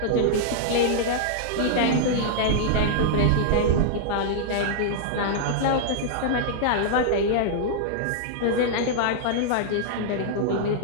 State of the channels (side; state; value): both; different; correlation -0.02